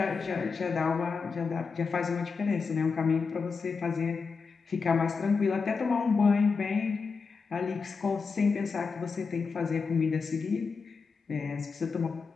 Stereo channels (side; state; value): right; quieter; 5.0 dB